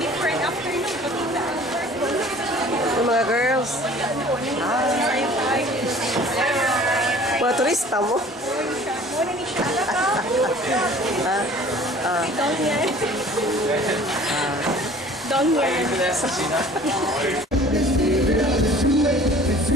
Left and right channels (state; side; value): normal; both; correlation 0.48